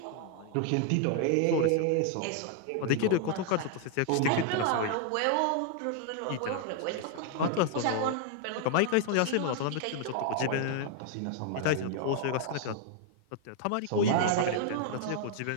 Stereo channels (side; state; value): both; different; correlation 0.00